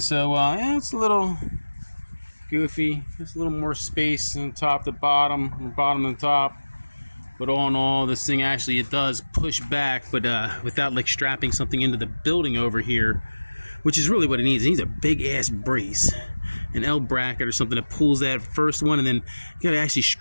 so, yeah, it's a little goofy. Just a little more space on top to bottom, and bottom to top. But all in all, this thing actually, it does push back, but without like strapping something into the building over here, which is really what it needs. It needs a big ass brace, an L bracket or something that pulls that first one, and then you gotta actually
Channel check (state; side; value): inverted; both; correlation -1.00